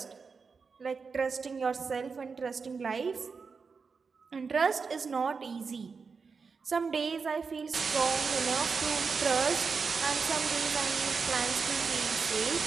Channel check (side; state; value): left; quieter; 5.1 dB